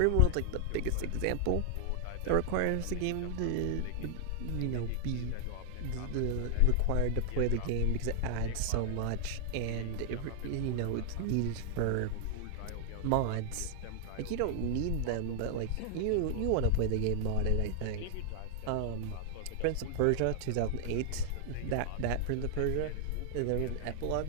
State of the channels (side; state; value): both; different; correlation 0.00